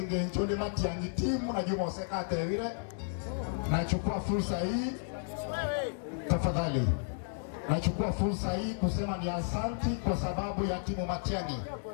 nchoni Matiang'i timu na Juma Osekate vile. Nachukua fursa hii tafadhali. Nachukua fursa hii kusema ni asante kwa sababu ya timu Matiang'i.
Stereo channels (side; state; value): right; silent; digital silence